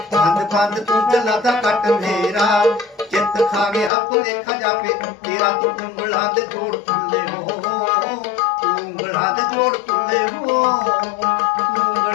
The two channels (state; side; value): drops out; right; at 3.9 s